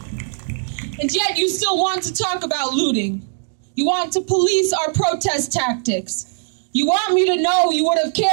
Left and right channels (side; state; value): left; silent; digital silence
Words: to talk about looting. You want to police our protest tactics. You want me to know you would have